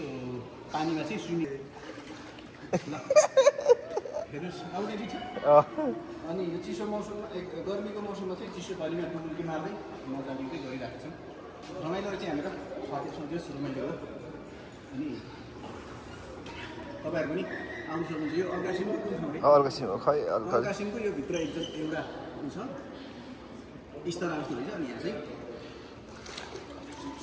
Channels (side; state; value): both; identical; correlation 1.00